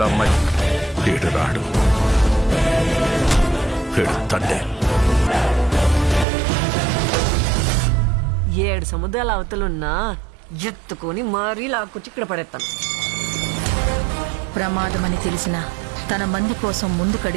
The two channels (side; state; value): left; drops out; at 6.2 s